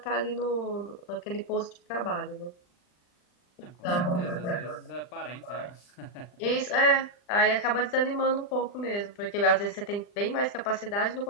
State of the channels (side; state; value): right; late; 40 ms